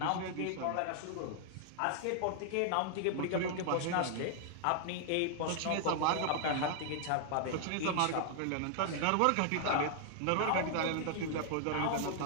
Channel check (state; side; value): different; both; correlation -0.01